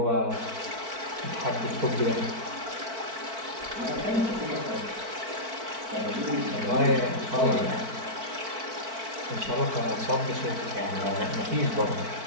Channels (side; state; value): left; late; 4.5 ms